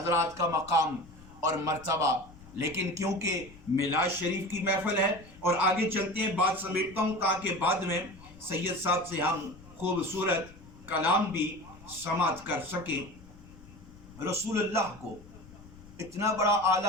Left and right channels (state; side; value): noise; left; rumble, 21 dB below the sound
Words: کا مقام اور مرتبہ، لیکن کیونکہ میلاد شریف کی محفل ہے اور آگے چلتے ہیں، بات سمیٹتا ہوں تاکہ بعد میں سید صاحب سے ہم خوبصورت کلام بھی سماعت کر سکیں۔ رسول اللہ کو اتنا بڑا